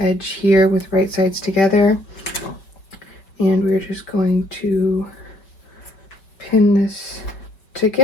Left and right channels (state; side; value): late; right; 5.3 ms